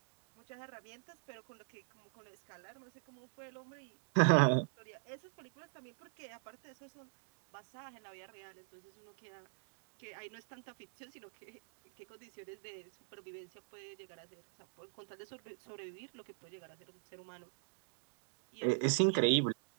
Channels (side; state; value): left; silent; digital silence